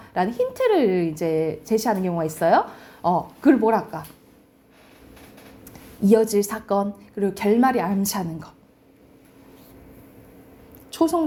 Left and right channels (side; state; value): both; identical; correlation 1.00